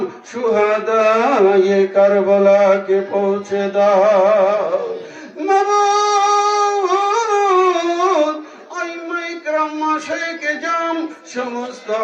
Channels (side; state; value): both; identical; correlation 1.00